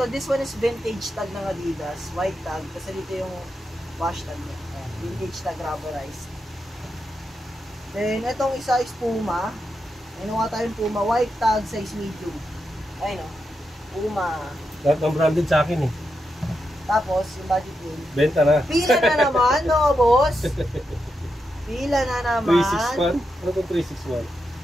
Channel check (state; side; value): normal; both; correlation 0.85